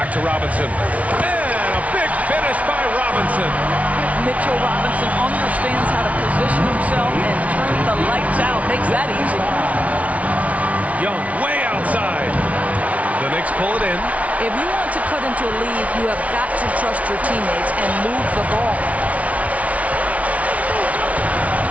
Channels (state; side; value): late; left; 0.067 ms